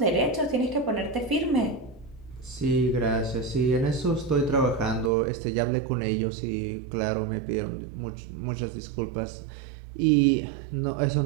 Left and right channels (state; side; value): drops out; left; at 5.1 s